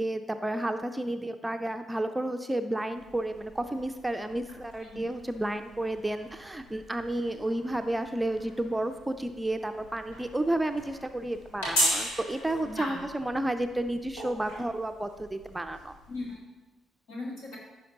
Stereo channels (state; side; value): normal; both; correlation 0.88